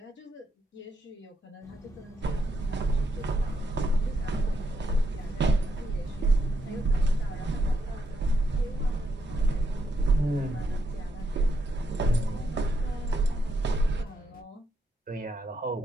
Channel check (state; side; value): normal; both; correlation 0.79